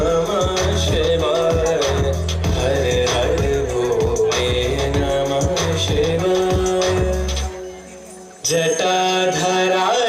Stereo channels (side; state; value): both; identical; correlation 1.00